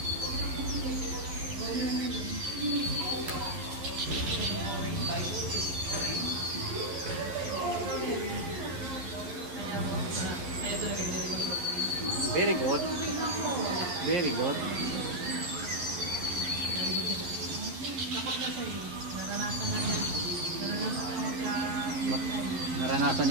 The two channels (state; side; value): late; left; 11 ms